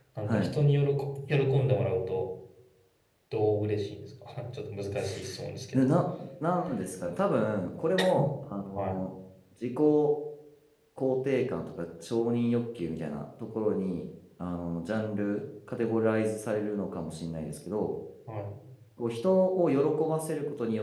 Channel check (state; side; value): identical; both; correlation 1.00